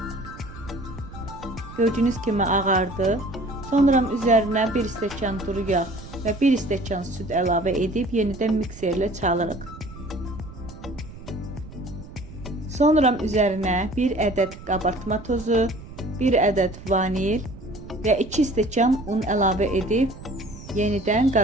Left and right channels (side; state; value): right; noise; rumble, 15 dB below the sound